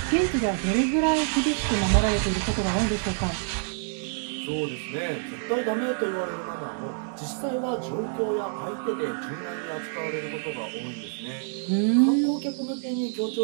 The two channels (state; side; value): silent; left; digital silence